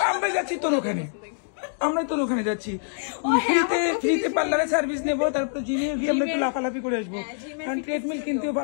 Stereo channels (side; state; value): right; silent; digital silence